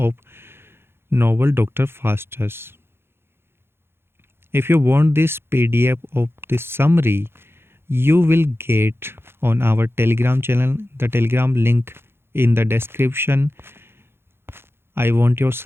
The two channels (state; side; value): late; left; 0.11 ms